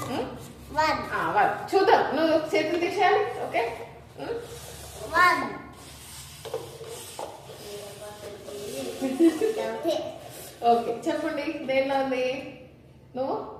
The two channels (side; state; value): both; identical; correlation 1.00